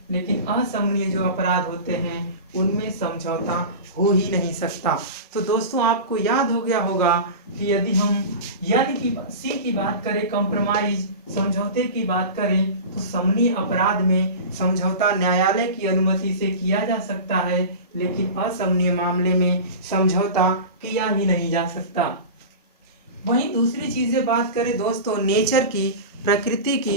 लेकिन असमनीय जो अपराध होते हैं उनमें समझौता हो ही नहीं सकता। तो दोस्तों आपको याद हो गया होगा कि यदि हम सी की बात करें कंप्रोमाइज, समझौते की बात करें तो समनीय अपराध में समझौता न्यायालय की अनुमति से किया जा सकता है, लेकिन असमनीय मामले में समझौता किया ही नहीं जा सकता। वहीं दूसरी चीज़ें बात करें दोस्तों नेचर की, प्रकृति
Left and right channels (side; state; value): both; inverted; correlation -0.30